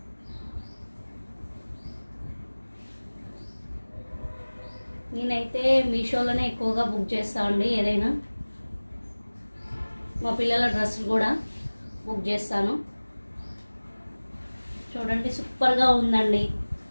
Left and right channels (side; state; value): both; inverted; correlation -1.00